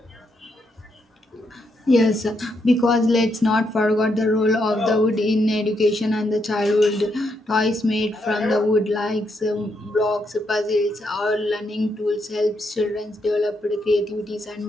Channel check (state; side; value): normal; both; correlation 0.79